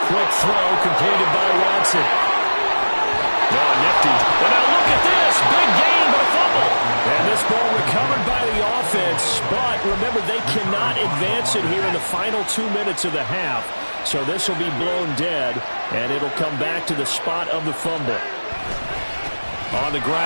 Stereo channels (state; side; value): inverted; both; correlation -1.00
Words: Quick throw completed by Watson. Oh, nifty. And now look at this. Big gain, but a fumble. And this ball recovered by the offense. But remember, they cannot advance it here in the final 2 minutes of the half. So this will be blown dead, and it'll come back to the spot of the fumble. On the